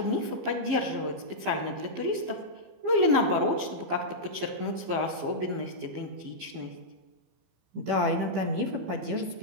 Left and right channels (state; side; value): late; left; 15 ms